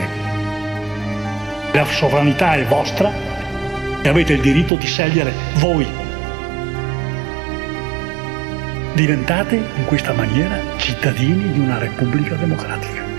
La sovranità è vostra e avete il diritto di scegliere voi. Diventate in questa maniera cittadini di una Repubblica democratica,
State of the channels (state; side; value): drops out; left; at 4.7 s